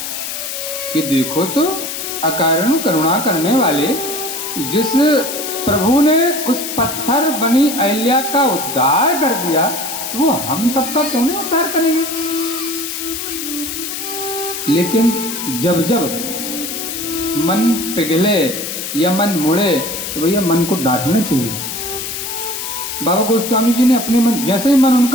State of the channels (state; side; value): noise; left; hiss, 5 dB below the sound